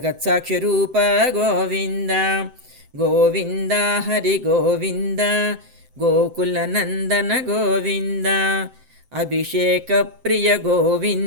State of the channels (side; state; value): left; late; 7.7 ms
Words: ರೂಪ ಗೋವಿಂದ ಗೋವಿಂದ ಹರಿ ಗೋವಿಂದ ಗೋಕುಲ ನಂದನ ಗೋವಿಂದ ಅಭಿಷೇಕ ಪ್ರಿಯ